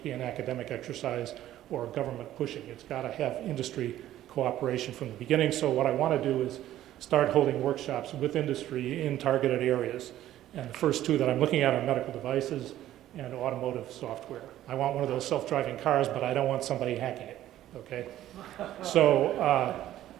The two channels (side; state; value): left; quieter; 13.2 dB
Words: be an academic exercise or government pushing. It's got to have industry cooperation from the beginning. So what I want to do is start holding workshops with industry in targeted areas. And the first two that I'm looking at are medical devices and automotive software. I want one of those self-driving cars, but I don't want somebody hacking it, okay? So